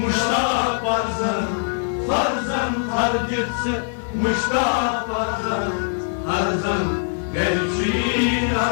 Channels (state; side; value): silent; right; digital silence